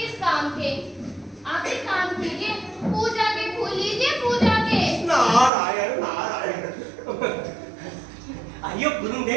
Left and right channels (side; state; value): left; drops out; at 5.5 s